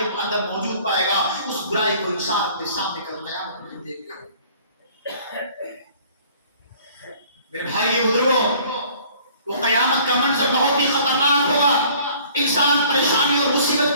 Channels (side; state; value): both; inverted; correlation -0.53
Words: اندر موجود پائے گا. اس برائی کو انسان اپنے سامنے کر قیامت میں دیکھ گا. میرے بھائی بزرگوں، وہ قیامت کا منظر بہت ہی خطرناک ہوگا. انسان پریشانی اور مصیبت